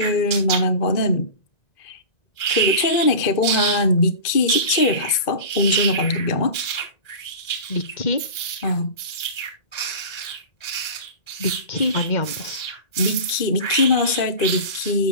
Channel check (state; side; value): late; right; 1.9 ms